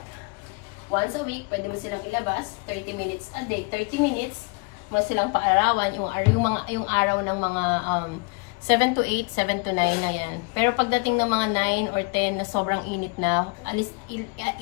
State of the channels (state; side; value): quieter; right; 30.6 dB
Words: once a week, pwede mo silang ilabas, 30 minutes a day, 30 minutes, mo silang paarawan, yung araw ng mga 7 to 8, 7 to 9 na yan. Pero pagdating ng mga 9 or 10 na sobrang init na,